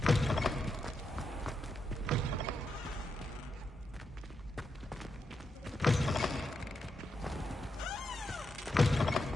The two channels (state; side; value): normal; both; correlation 0.84